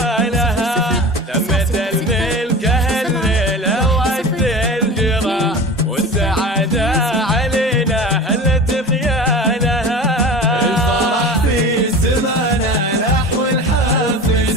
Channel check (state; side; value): normal; both; correlation 0.34